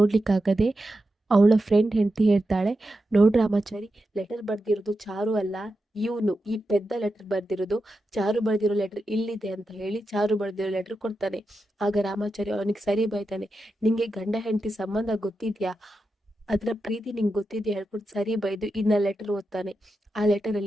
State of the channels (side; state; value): both; normal; correlation 0.89